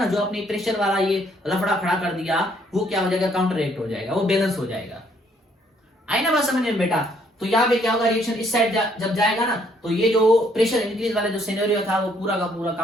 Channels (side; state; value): both; normal; correlation 0.67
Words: जो अपने प्रेशर वाला ये लफड़ा खड़ा कर दिया, वो क्या हो जाएगा, काउंटर रेट हो जाएगा, वो बैलेंस हो जाएगा। आई ना बात समझ में बेटा। तो यहाँ पे क्या होगा, रिएक्शन इस साइड जब जाएगा ना, तो ये जो प्रेशर इंक्रीज वाला जो सिनेरियो था वो पूरा का पूरा